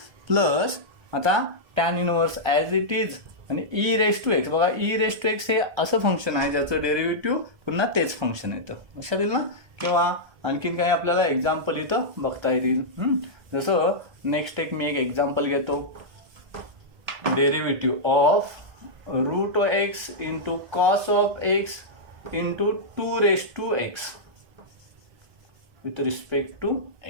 प्लस आता tan inverse as it is आणि ई रेस टू एक्स. बघा ई रेस टू एक्स हे असं फंक्शन आहे ज्याचं डेरिव्हेटिव्ह पुन्हा तेच फंक्शन येतं लक्षात येईल ना. किंवा आणखीन काही आपल्याला एक्झाम्पल इथं बघता येतील. जसं नेक्स्ट मी एक एक्झाम्पल घेतो derivative of root x into cos of x into 2 with respect to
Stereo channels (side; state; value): left; late; 1.3 ms